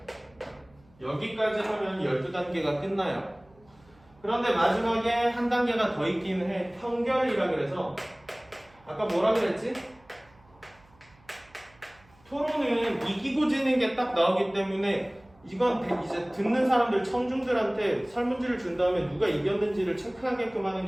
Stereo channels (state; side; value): noise; right; hum, 29 dB below the sound